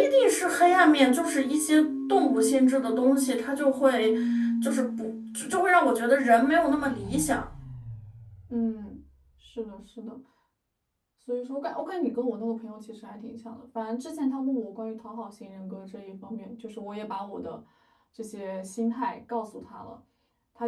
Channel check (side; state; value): both; identical; correlation 1.00